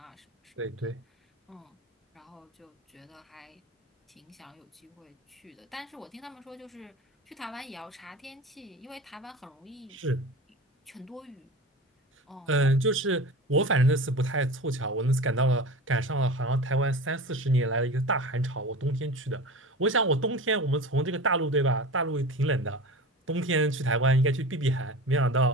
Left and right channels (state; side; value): normal; both; correlation 0.32